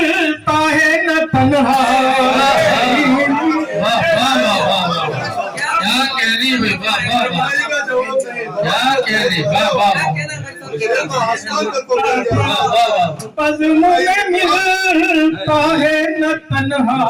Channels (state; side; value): identical; both; correlation 1.00